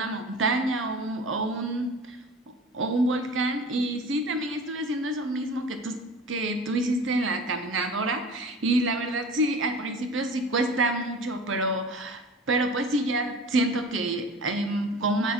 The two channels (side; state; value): both; normal; correlation 0.38